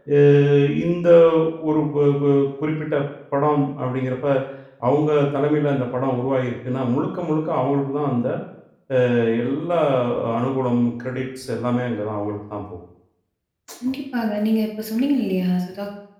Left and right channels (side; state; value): both; identical; correlation 1.00